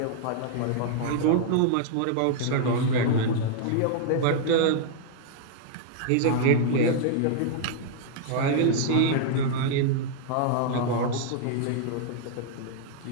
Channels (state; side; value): different; both; correlation -0.01